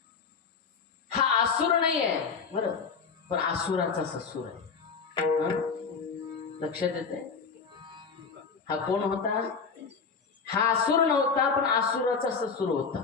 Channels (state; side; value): quieter; right; 5.4 dB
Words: हा असुर नाही आहे बरं, पण असुराचा ससुर आहे. लक्षात येते? हा कोण होता? हा असुर नव्हता, पण असुराचा ससुर होता,